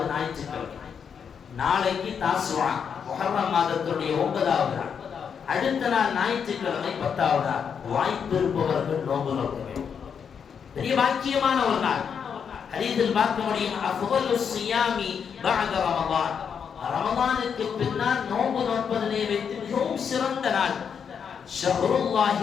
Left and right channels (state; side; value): quieter; right; 7.0 dB